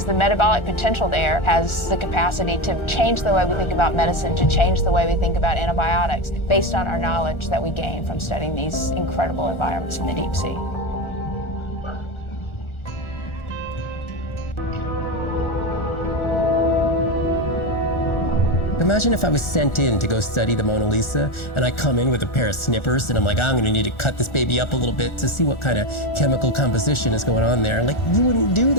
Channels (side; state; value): right; late; 1.4 ms